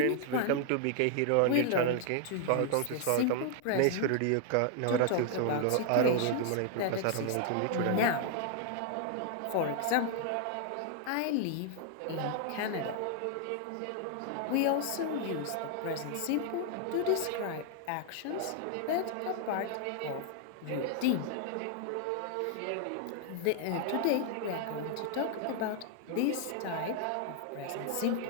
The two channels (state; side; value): different; both; correlation 0.00